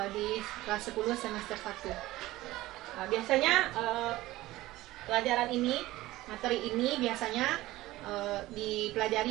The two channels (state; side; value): quieter; left; 17.4 dB